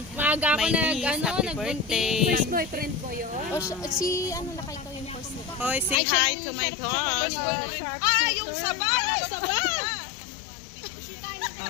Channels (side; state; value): right; drops out; at 6.0 s